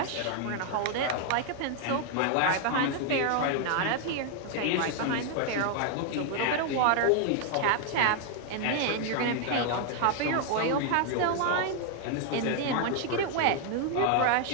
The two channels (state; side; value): different; both; correlation 0.00